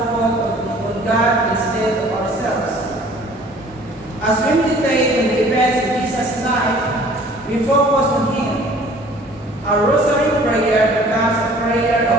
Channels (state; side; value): normal; both; correlation 0.52